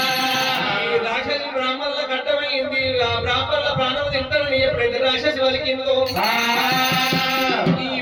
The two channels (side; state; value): both; identical; correlation 1.00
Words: ఈ రాక్షసి బ్రాహ్మణులకు అడ్డమైంది. ఆ బ్రాహ్మణుల ప్రాణం తింటారని ఎప్పుడైతే రాక్షసి వలికిందో ఈ